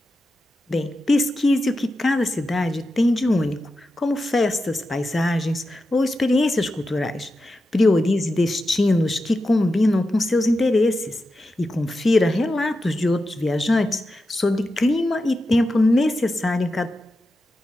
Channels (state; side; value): normal; both; correlation 0.90